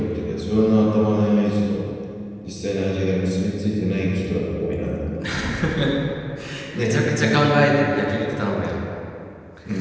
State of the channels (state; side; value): identical; both; correlation 1.00